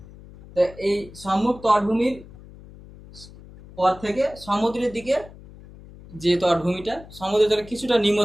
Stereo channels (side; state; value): left; noise; hum, 19 dB below the sound